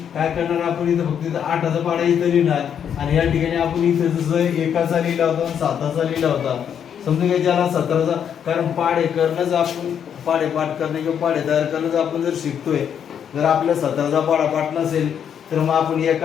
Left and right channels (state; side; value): quieter; right; 8.4 dB